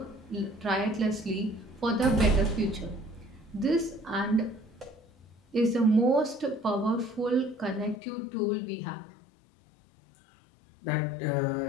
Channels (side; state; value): right; drops out; at 8.0 s